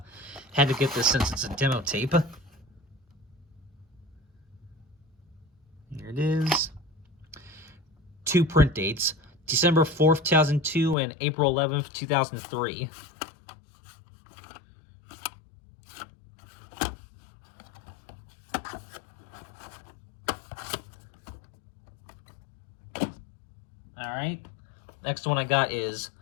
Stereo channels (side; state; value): right; drops out; at 11.0 s